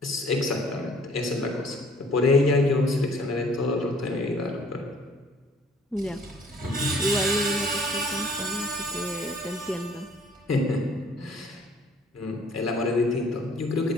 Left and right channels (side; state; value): both; normal; correlation 0.56